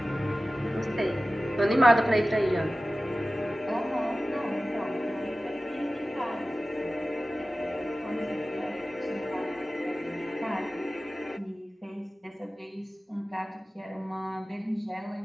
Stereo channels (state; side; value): normal; both; correlation 0.96